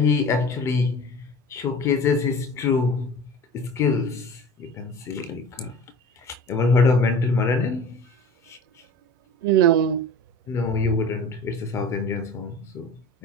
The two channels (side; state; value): both; normal; correlation 0.39